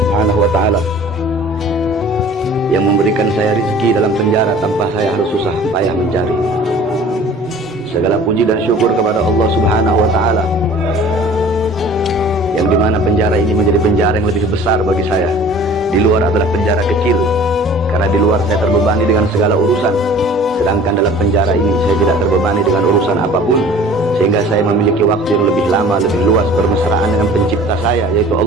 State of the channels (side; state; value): both; normal; correlation 0.46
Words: wa Ta'ala yang memberikan saya rezeki dalam penjara tanpa saya harus susah payah mencari. Segala puji dan syukur kepada Allah Subhanahu wa Ta'ala yang dimana penjara ini menjadi penjara yang lebih besar bagi saya. Di luar adalah penjara kecil, karena di luar saya terbebani dengan segala urusan, sedangkan dalam penjara ini saya tidak terbebani dengan urusan apapun, sehingga saya memiliki waktu yang lebih lama, lebih luas bermesraan dengan pencipta saya, yaitu